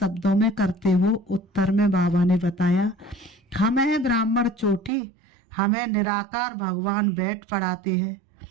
में करते हो? उत्तर में बाबा ने बताया, हमें ब्राह्मण चोटी, हमें निराकार भगवान बैठ पढ़ाते हैं।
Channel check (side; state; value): left; drops out; at 4.9 s